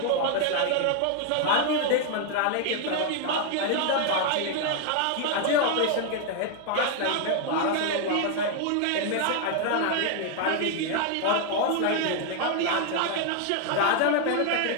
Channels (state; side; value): different; both; correlation 0.00